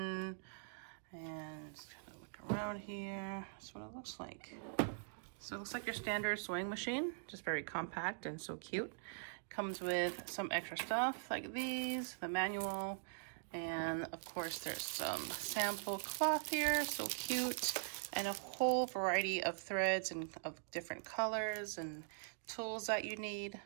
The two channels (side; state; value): left; silent; digital silence